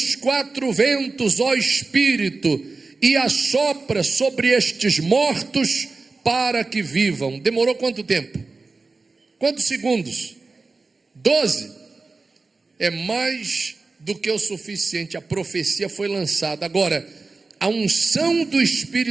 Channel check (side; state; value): left; quieter; 3.9 dB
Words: quatro ventos, ó Espírito, e assopra sobre estes mortos para que vivam. Demorou quanto tempo? Quantos segundos? 12. É mais do que o suficiente. A profecia foi lançada. Agora, a unção do